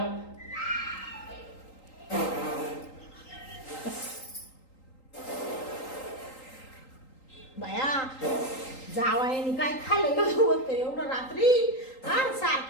बाया जावायनी काय खाल्लं होतं एवढं रात्री हा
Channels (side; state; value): right; late; 3.8 ms